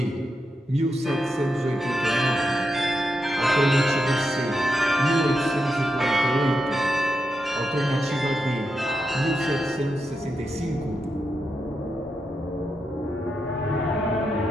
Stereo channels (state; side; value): normal; both; correlation 0.86